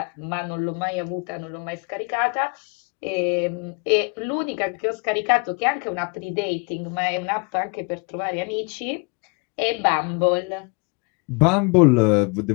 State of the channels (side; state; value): right; quieter; 32.3 dB